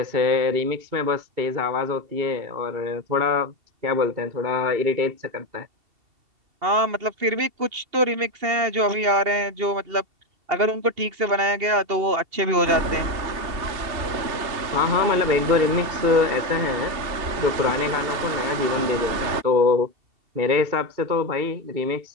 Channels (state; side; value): late; left; 2.7 ms